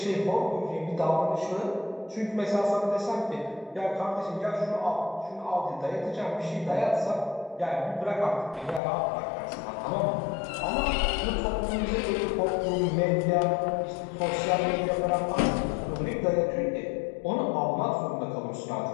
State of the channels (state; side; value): drops out; right; at 8.8 s